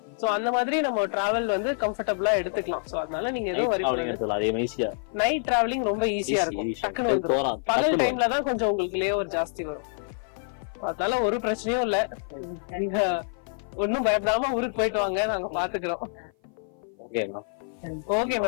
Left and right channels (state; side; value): silent; right; 55 dB below the other